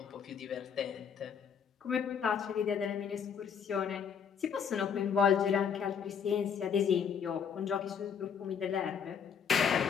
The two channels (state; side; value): quieter; right; 7.2 dB